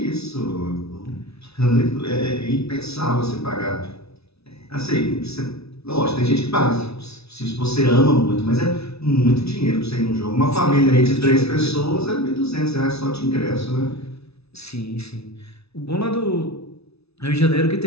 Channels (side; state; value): right; late; 0.79 ms